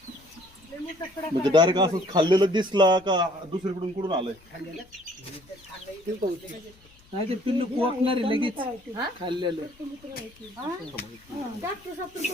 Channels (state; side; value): noise; left; rumble, 27 dB below the sound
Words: म्हणजे डायरेक्ट असंच खाल्लेलं दिसला का दुसरीकडून कुठून आलंय? नाही ते पिल्लू कोकणार लगेच खाल्लेलं.